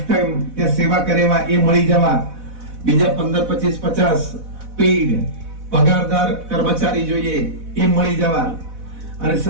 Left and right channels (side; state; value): left; late; 4.1 ms